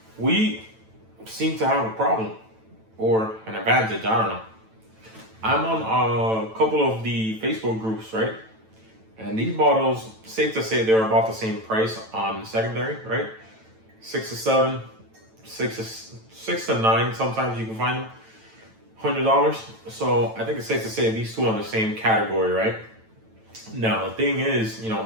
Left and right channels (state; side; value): late; left; 9.1 ms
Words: We seem to have a problem or an advantage. I don't know. I'm on a couple of the Facebook groups, right? And these bottles, safe to say, they're about the same price on secondary, right? 6 to 7, 6 to 9. Sometimes you can find them $100. So I think it's safe to say these two are in the same category, right? Now, the thing is,